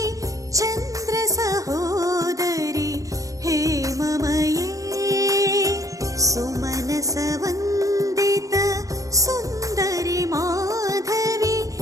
చంద్ర సహోదరి హేమమయే. సుమనస వందిత సుందరి మాధవి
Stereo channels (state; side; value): late; left; 0.16 ms